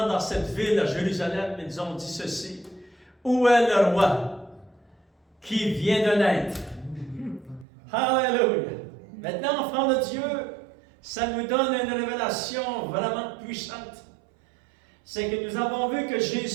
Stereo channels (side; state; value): left; drops out; at 7.7 s